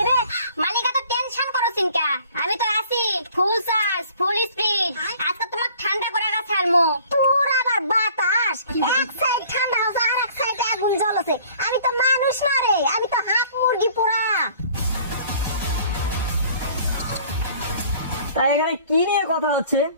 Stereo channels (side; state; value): both; inverted; correlation -0.53